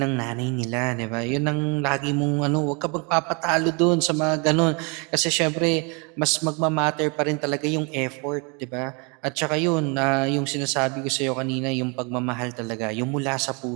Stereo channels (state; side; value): quieter; left; 33.0 dB